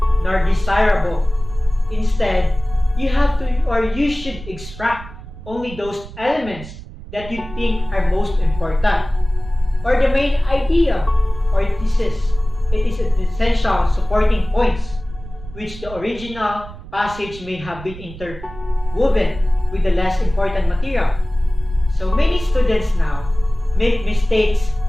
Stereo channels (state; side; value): noise; right; rumble, 15 dB below the sound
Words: nor desirable. Instead, you have to or you should extract only those elements that you think are most important, or the main idea or thesis. It is an essential supporting points, which the original passage may have been interwoven with the less important material. So many students now make mistakes